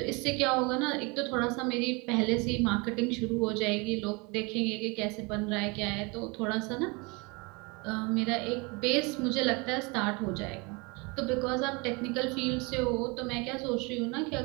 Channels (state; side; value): quieter; left; 28.4 dB